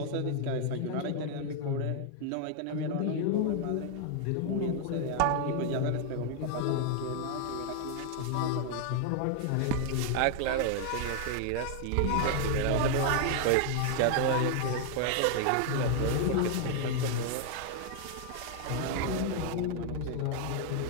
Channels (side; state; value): both; different; correlation 0.00